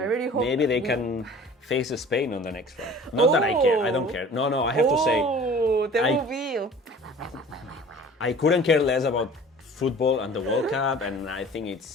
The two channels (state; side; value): normal; both; correlation 0.45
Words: really hope maybe they can face Spain on the next round. Not that I care. I don't care. No, I have to say, there I- will be. I couldn't care less about football and the World Cup, and I think